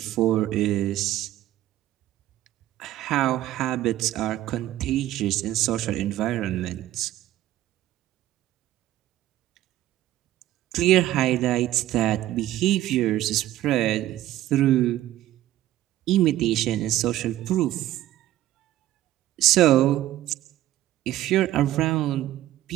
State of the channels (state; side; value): quieter; left; 14.2 dB